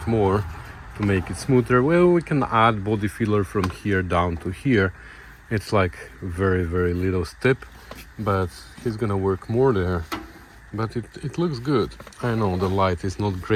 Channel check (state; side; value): identical; both; correlation 1.00